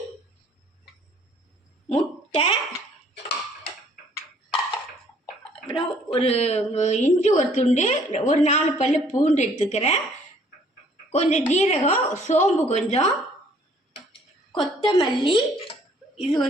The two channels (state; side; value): normal; both; correlation 0.60